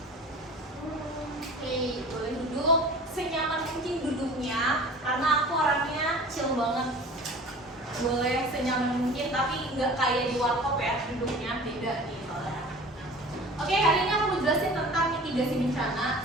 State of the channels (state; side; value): normal; both; correlation 0.42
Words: Oke, boleh duduk senyaman mungkin duduknya karena aku orangnya chill banget. Boleh senyaman mungkin tapi nggak kayak di warkop ya, duduknya beda nih soalnya. Oke, hari ini aku mau jelasin tentang mitigasi bencana.